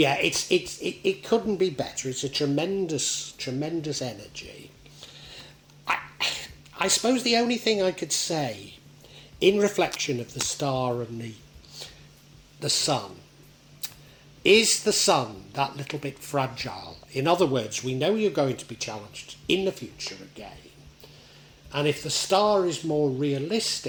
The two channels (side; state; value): both; identical; correlation 1.00